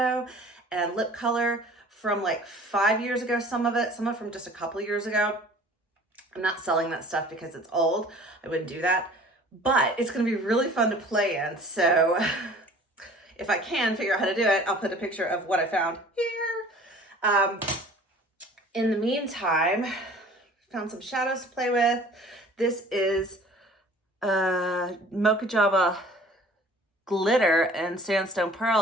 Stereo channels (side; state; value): both; normal; correlation 0.48